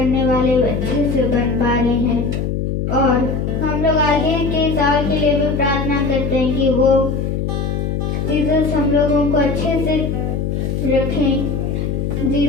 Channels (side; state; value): left; noise; hum, 1 dB below the sound